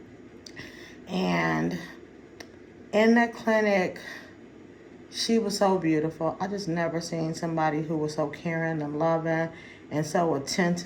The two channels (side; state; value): both; identical; correlation 1.00